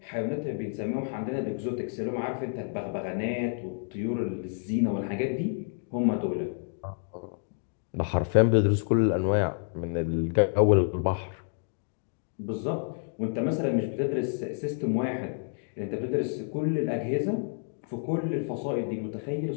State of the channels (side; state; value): right; silent; 58 dB below the other